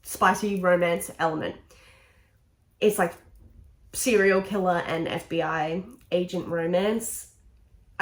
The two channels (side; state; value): both; identical; correlation 1.00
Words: spicy romance element. It's like serial killer and FBI agent romance,